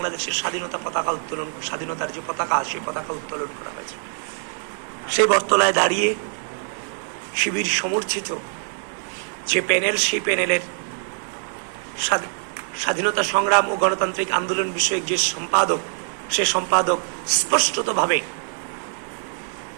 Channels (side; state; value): left; silent; 59 dB below the other